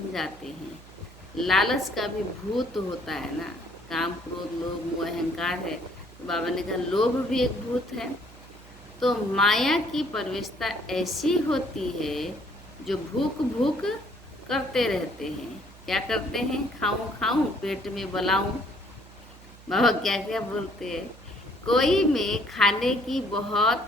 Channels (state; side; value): noise; right; hum, 21 dB below the sound